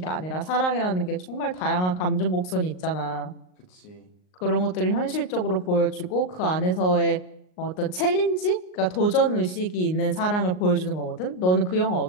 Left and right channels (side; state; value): right; late; 38 ms